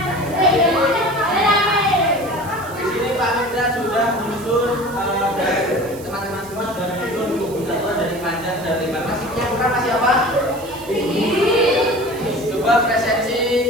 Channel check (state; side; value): noise; right; hiss, 19 dB below the sound